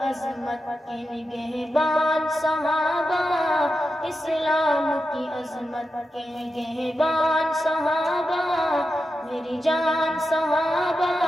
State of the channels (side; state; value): both; normal; correlation 0.90